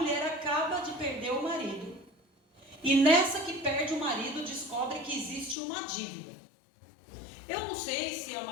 acaba de perder o marido, e nessa que perde o marido, descobre que existe uma dívida. Eu não sei se é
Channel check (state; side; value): drops out; right; at 5.6 s